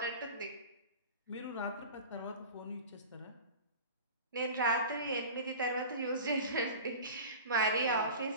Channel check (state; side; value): inverted; both; correlation -0.36